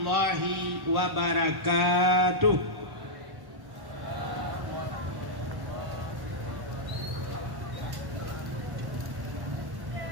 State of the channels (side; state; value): left; late; 1.1 ms